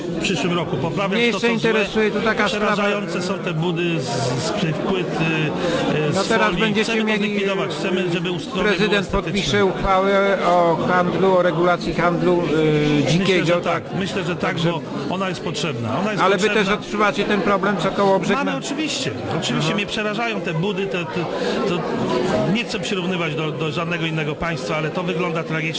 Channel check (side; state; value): both; identical; correlation 1.00